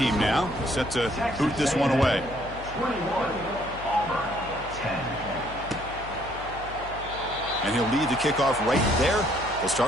now, set to boot this one away. 21, Auburn, 10. And he'll lead the kickoff right there. He'll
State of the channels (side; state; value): left; noise; hum, 14 dB below the sound